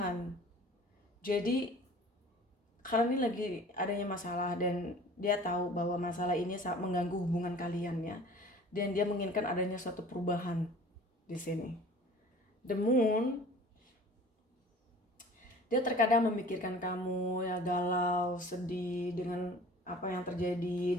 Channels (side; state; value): both; normal; correlation 0.46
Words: Jadi karena ini lagi adanya masalah dan dia tahu bahwa masalah ini sangat mengganggu hubungan kalian ya. Dan dia menginginkan adanya suatu perubahan di sini. The Moon, dia terkadang memikirkan kamu ya, galau, sedih dengan apa yang terjadi